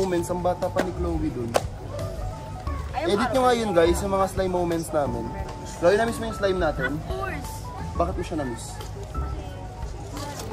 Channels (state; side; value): identical; both; correlation 1.00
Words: ang bata pa ni Chloe dun. Edit nyo nga yun guys, yung mga slime moments namin. Chloe, na-miss mo yung slime natin? Of course. Bakit mo siya na-miss?